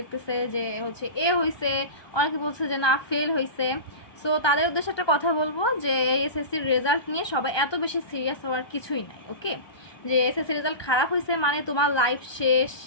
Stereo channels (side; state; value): right; late; 1.2 ms